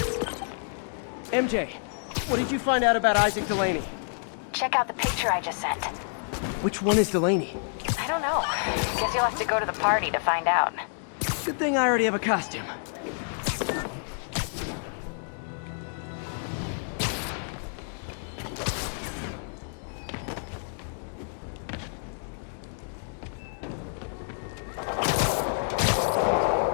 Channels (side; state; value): right; silent; digital silence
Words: MJ, what did you find out about Isaac Delaney? Check out the picture I just sent. Which one is Delaney? I don't know. Guess you'll have to go to the party to find out. Good thing I already have a costume.